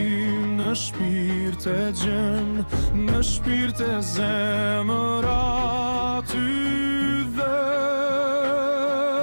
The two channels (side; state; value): both; inverted; correlation -1.00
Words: në shpirt e gjen, në shpirt e zemër aty dhe